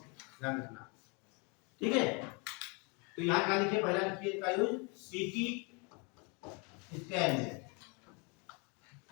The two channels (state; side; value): quieter; right; 30.5 dB